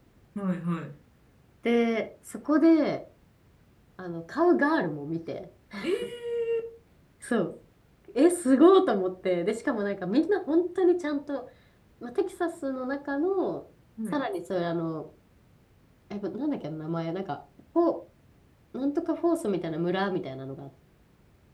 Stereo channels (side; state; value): both; identical; correlation 1.00